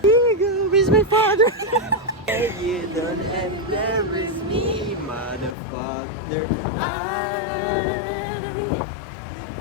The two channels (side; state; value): right; drops out; at 5.6 s